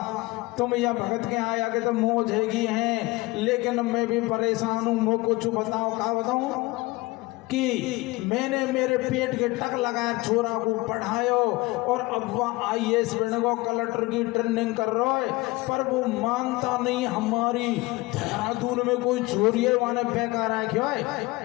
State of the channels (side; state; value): right; quieter; 21.8 dB